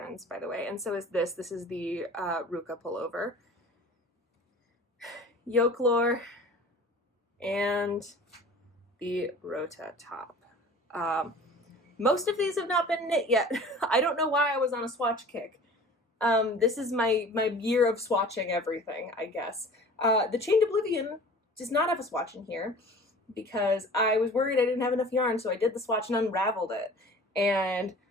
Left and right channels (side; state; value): both; normal; correlation 0.43